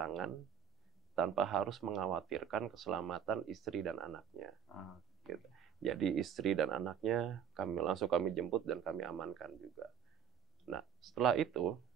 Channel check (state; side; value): quieter; left; 8.3 dB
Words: tanpa harus mengkhawatirkan keselamatan istri dan anaknya. Gitu. Jadi istri dan anaknya kami jemput dan kami amankan juga. Nah, setelah itu